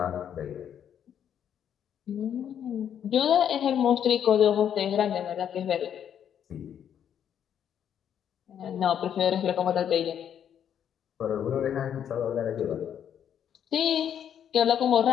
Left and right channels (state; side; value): quieter; right; 9.1 dB